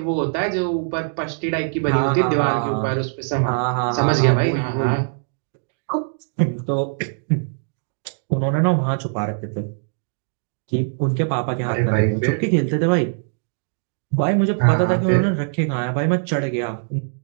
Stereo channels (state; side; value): silent; left; digital silence